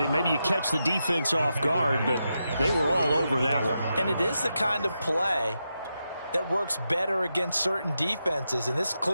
maybe you catch the defense off guard, but they were all over that one. And it is the kind of play that works better against certain defenses, and this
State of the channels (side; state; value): both; inverted; correlation -0.87